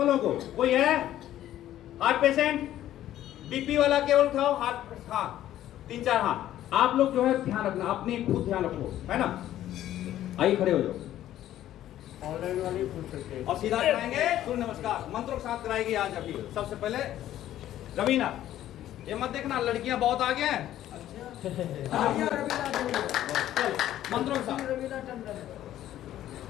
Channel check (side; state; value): right; quieter; 12.7 dB